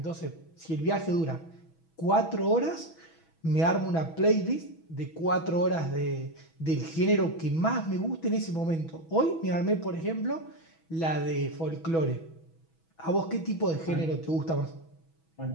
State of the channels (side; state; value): right; late; 6.1 ms